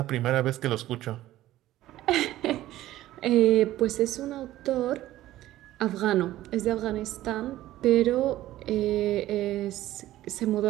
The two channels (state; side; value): quieter; left; 14.8 dB